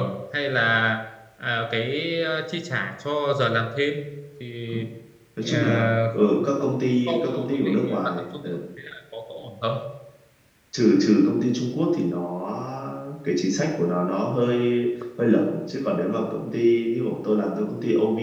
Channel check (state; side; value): identical; both; correlation 1.00